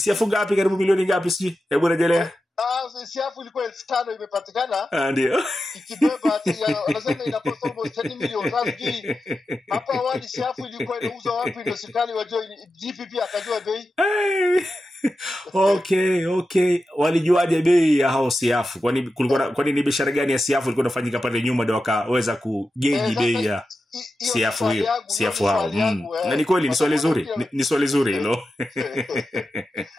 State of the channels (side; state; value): both; normal; correlation 0.91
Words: ngapi, karibu milioni ngapi siji? Hebu rejelea. Siafu ilikuwa 5,000 imepatikana. Ndio. Ikibeba ati wanasema ina cost almost 10 million. Sasa hapa awali siafu ilikuwa inauzwa wapi ndio serikali wajua GPP akajua bei. Okay. Walijuaje bei ya hao siafu? Kwani ni biashara gani ya siafu ilikuwa inafanyika pale nyuma ndio wakaweza kugeji bei ya siafu hiyo? Siafu hao. Na ni kweli ni swali zuri. Ni swali zuri hilo.